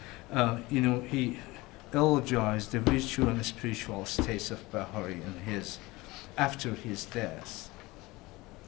he eulogized the virtual and spiritual states of Bahari and after his death.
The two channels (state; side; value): quieter; right; 21.4 dB